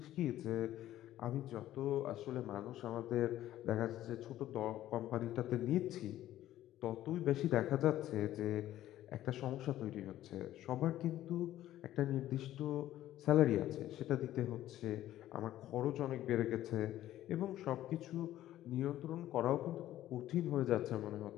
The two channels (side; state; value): right; quieter; 13.5 dB